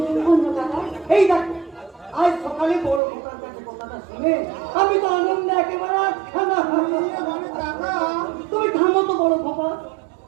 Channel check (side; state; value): left; drops out; at 3.0 s